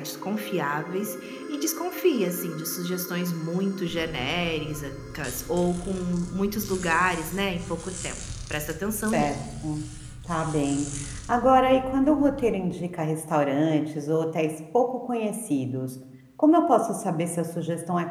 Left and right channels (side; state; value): both; identical; correlation 1.00